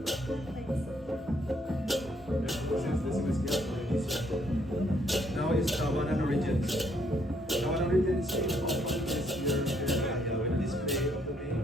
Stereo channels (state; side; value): normal; both; correlation 0.69